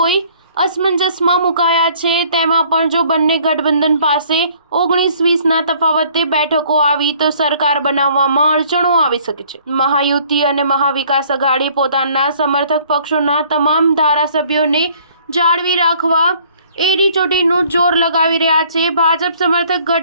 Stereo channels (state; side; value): inverted; both; correlation -0.58